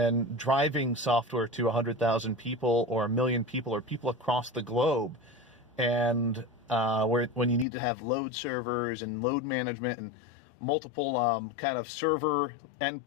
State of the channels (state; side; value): drops out; right; at 7.7 s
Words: driving software to 100,000 people or 1 million people or people across the globe. And when you need to have load servers and load management and multiple kind of server